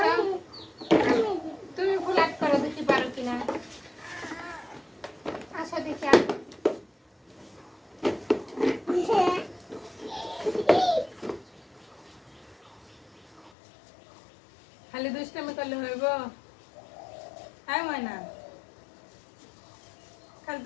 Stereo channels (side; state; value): right; drops out; at 13.5 s